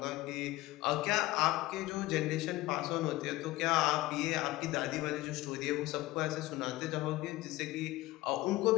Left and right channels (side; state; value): right; quieter; 18.1 dB